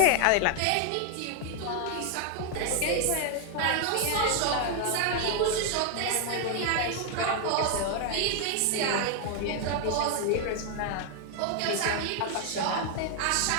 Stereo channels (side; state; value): both; different; correlation 0.00